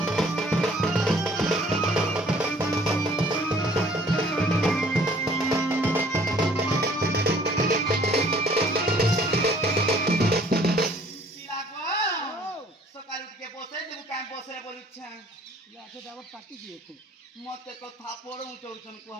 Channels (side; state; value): both; normal; correlation 0.57